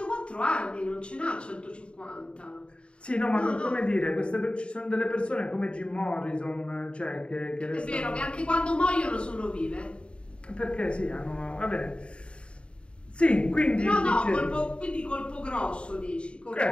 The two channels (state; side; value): late; right; 0.056 ms